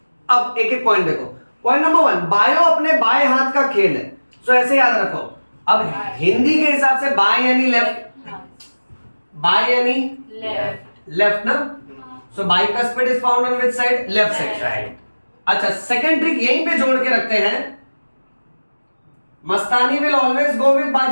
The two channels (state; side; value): inverted; both; correlation -1.00